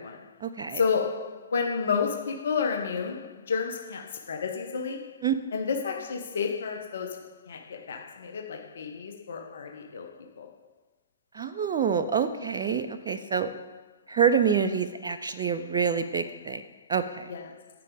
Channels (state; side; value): inverted; both; correlation -0.38